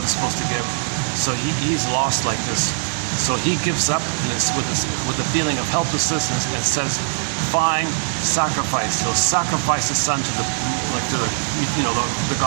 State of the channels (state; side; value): silent; left; digital silence